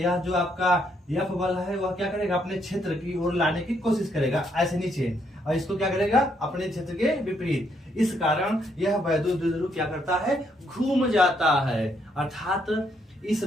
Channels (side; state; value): both; normal; correlation 0.73